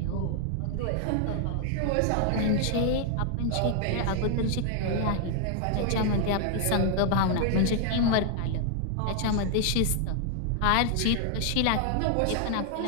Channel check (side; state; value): both; different; correlation 0.00